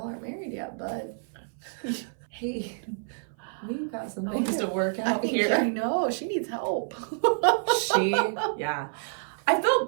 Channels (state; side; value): silent; left; 56 dB below the other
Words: aren't married yet, bud. Hey, we've got some things to work out here. I know, she needs help. I felt